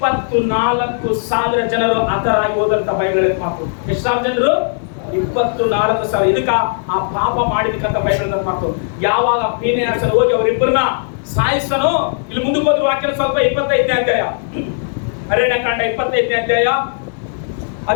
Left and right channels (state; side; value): silent; right; digital silence